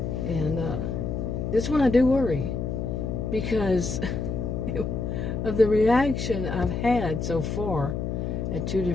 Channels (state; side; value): noise; left; hum, 2 dB below the sound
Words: And this one I do worry. Because of the reaction I've had so far at 2